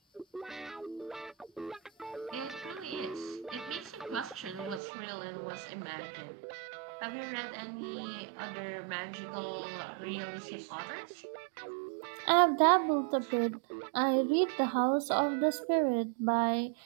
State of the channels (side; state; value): left; drops out; at 4.8 s